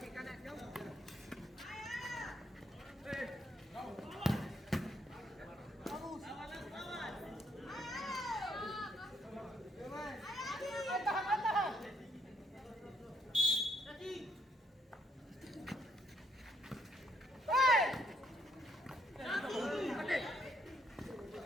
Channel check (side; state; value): both; normal; correlation 0.70